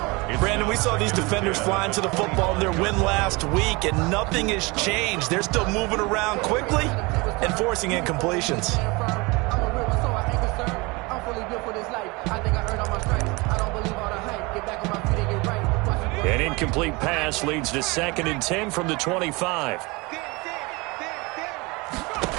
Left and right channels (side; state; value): left; quieter; 25.5 dB